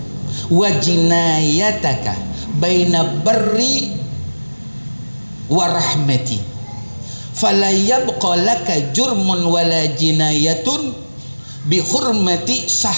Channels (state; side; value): inverted; both; correlation -1.00